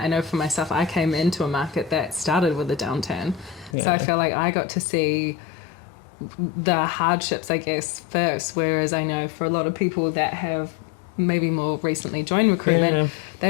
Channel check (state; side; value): drops out; right; at 3.8 s